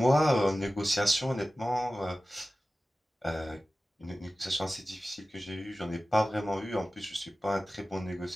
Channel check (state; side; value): normal; both; correlation 0.96